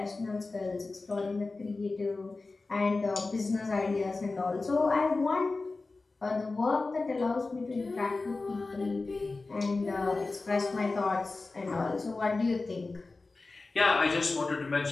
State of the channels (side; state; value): right; quieter; 3.6 dB